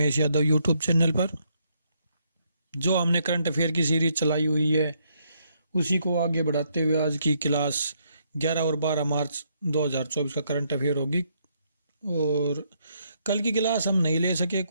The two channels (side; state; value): both; inverted; correlation -0.74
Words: Yadav YouTube channel पर। जो हमने करंट अफेयर की सीरीज चलाई हुई है उसी को आगे बढ़ाते हुए आज की क्लास 11 और 12 मार्च 2024 का करंट अफेयर होगी। और कल की क्लास हम नहीं ले सके,